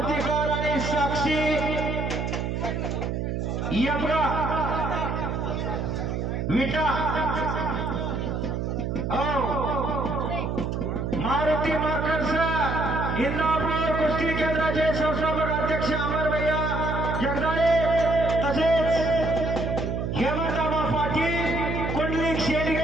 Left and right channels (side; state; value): right; noise; hum, 2 dB below the sound